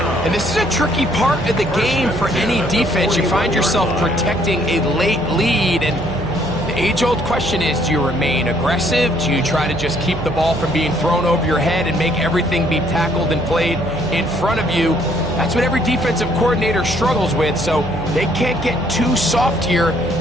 And this is a tricky part of the game for any defense. You find yourself protecting a late lead, and the age-old question is, do you remain aggressive? Do you try to just keep the ball from being thrown over your head and make everything be tackled and played in front of you? That's what every defensive coordinator struggles with, so they can't get too soft here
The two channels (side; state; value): right; noise; hum, 10 dB below the sound